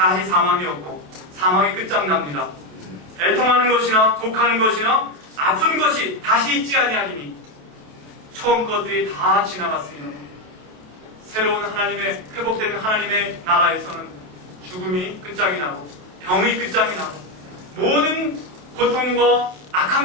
사망이 없고 사망이 끝장납니다. 애통하는 것이나 곡하는 것이나 아픈 것이 다시 있지 아니하리니 처음 것들이 다 지나갔습니다. 새로운 하나님의 회복된 하나님의 나라에서는 죽음이 끝장이 나고 병이 끝장이 나고 모든 고통과 악한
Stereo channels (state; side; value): late; left; 28 ms